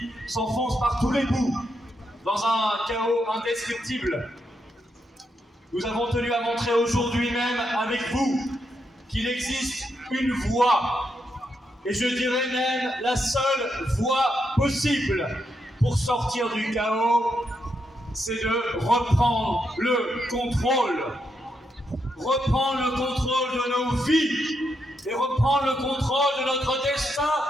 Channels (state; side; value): normal; both; correlation 0.81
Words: s'enfonce par tous les bouts dans un chaos indescriptible, nous avons tenu à montrer aujourd'hui même avec vous qu'il existe une voie, et je dirais même la seule voie possible pour sortir du chaos, c'est de reprendre le contrôle. Reprendre le contrôle de nos vies et reprendre le contrôle de notre destin